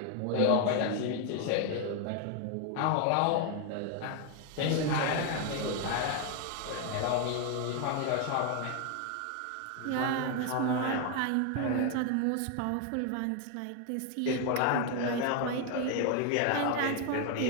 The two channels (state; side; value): different; both; correlation 0.01